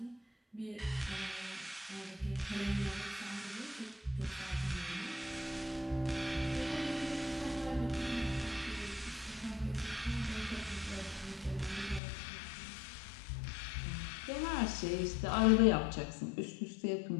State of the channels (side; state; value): right; drops out; at 12.0 s